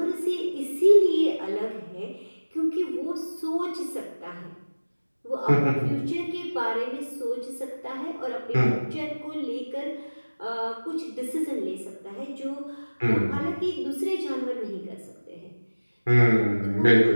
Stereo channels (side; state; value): both; inverted; correlation -1.00